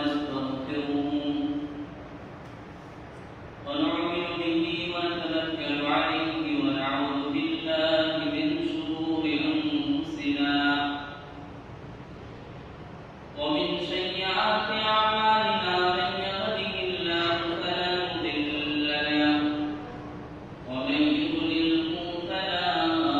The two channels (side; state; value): both; identical; correlation 1.00